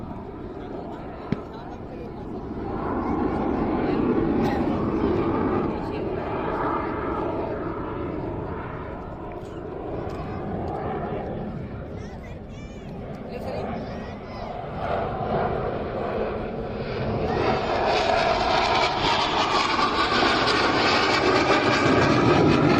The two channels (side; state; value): both; identical; correlation 1.00